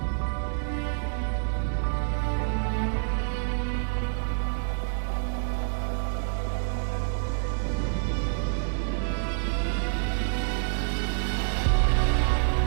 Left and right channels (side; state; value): left; silent; digital silence